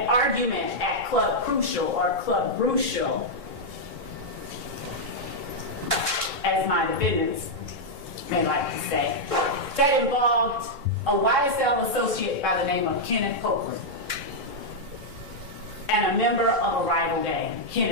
argument at Club Crucial or Club Brucial, as my defendants may like to say, that involved a YSL associate by the name of Kenneth Copeland and a member of a rival gang.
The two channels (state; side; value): late; left; 3.6 ms